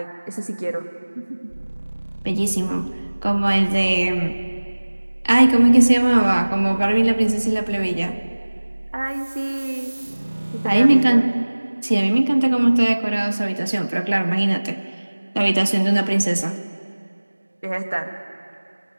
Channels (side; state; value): both; inverted; correlation -1.00